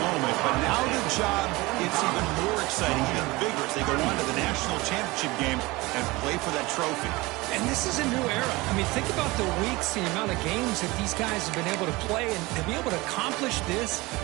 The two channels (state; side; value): quieter; left; 22.1 dB